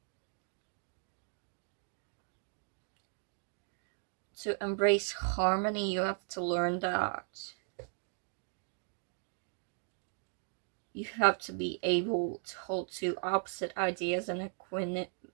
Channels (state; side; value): silent; left; 53 dB below the other